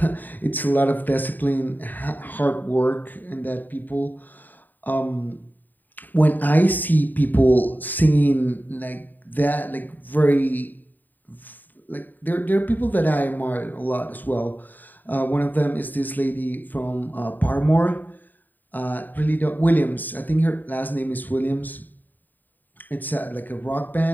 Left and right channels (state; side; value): late; right; 0.088 ms